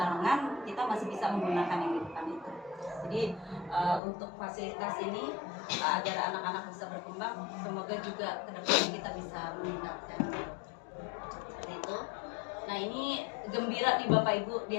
kita masih bisa menggunakan yang di depan itu. Jadi untuk fasilitas ini agar anak-anak bisa berkembang, semoga juga kedepannya kita bisa meningkatkan seperti itu. Nah ini gembira nih Bapak Ibu,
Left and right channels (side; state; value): right; drops out; at 4.0 s